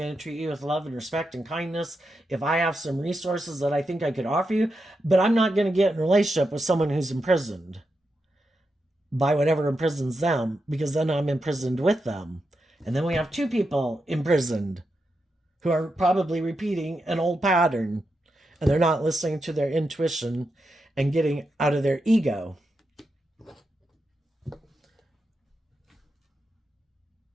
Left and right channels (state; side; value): normal; both; correlation 0.86